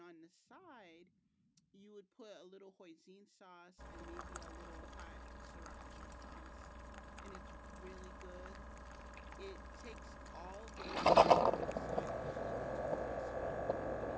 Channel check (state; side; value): identical; both; correlation 1.00